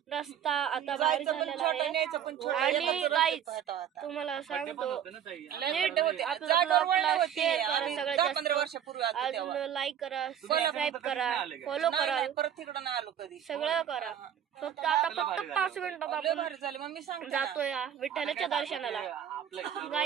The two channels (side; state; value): left; quieter; 9.5 dB